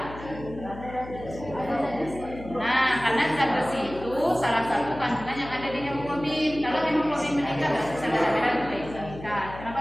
Nah, karena zat besi itu salah satu kandungan yang ada di hemoglobin. Kalau hemoglobin meningkat, berarti sel darah merah itu meningkat.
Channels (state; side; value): noise; left; hum, 14 dB below the sound